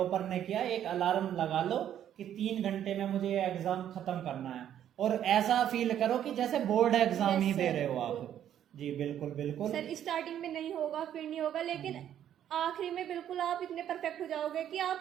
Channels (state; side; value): quieter; left; 10.4 dB